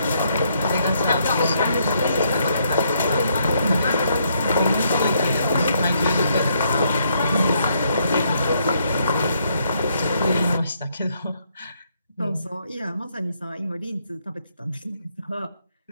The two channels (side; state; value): both; inverted; correlation -0.73